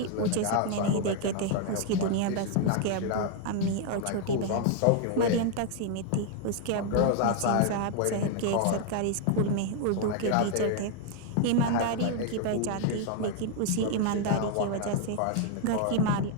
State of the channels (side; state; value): both; different; correlation 0.00